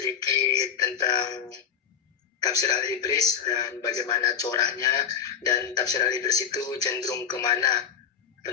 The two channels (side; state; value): right; quieter; 7.6 dB